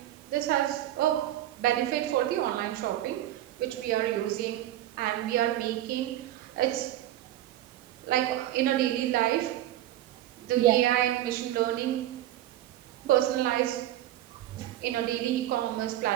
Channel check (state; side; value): quieter; left; 13.6 dB